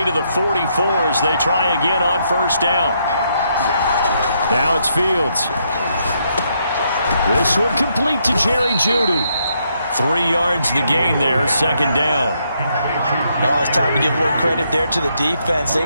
to the 44 as they try again on 1st down. Now it's Fields. This one complete to Jerry Jeudy. 3 yards the gain there, 2nd down. No, it's time to give a little credit there to the defense.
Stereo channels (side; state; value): both; inverted; correlation -0.76